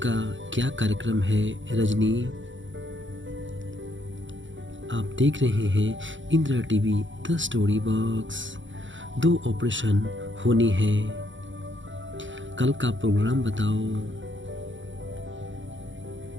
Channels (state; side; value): late; left; 0.55 ms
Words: क्या कार्यक्रम है रजनी? आप देख रहे हैं Indira TV the story box. 2 operation होने हैं, कल का प्रोग्राम बताओ।